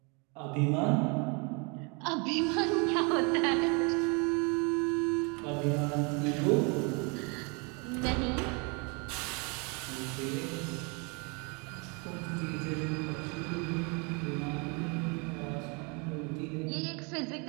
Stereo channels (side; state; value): left; quieter; 32.2 dB